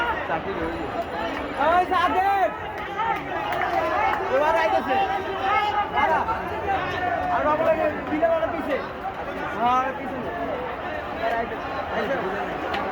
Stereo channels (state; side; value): identical; both; correlation 1.00